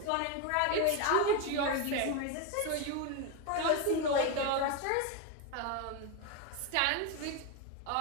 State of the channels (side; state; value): both; different; correlation 0.02